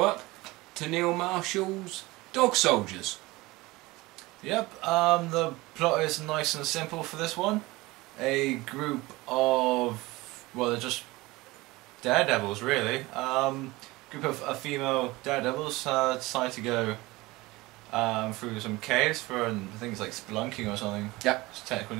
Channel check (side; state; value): left; quieter; 20.9 dB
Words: to Neil Marshall's Dog Soldiers. Yep, the plot is nice and simple for this one. A group of, well, they're just daredevils really. Group of female daredevils decide to go through some caves for, I think it's like spelunking or something. Yep. It's a technical